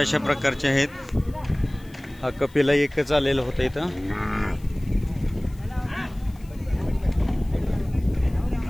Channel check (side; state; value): left; noise; hiss, 27 dB below the sound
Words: प्रकारचे आहेत. हा कपिला एकच आलेला होता इथं.